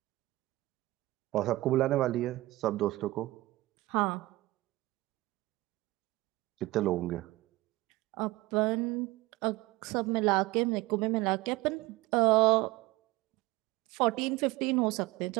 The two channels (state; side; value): quieter; left; 19.2 dB